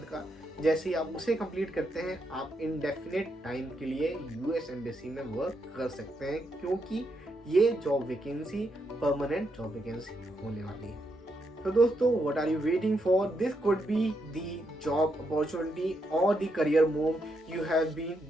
का। जैसे ही आप उसे कंप्लीट करते हैं, आप इनडेफिनेट टाइम के लिए यूएस एम्बेसी में वर्क कर सकते हैं, क्योंकि ये job vacancy permanent job vacancy होने वाली है। तो दोस्तों, what are you waiting for? This could be the job opportunity और the career move you have been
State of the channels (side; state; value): both; normal; correlation 0.80